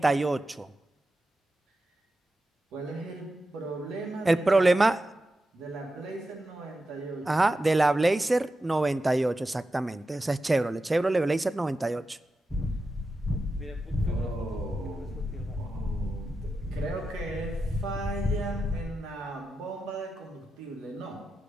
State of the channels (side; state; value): both; normal; correlation 0.90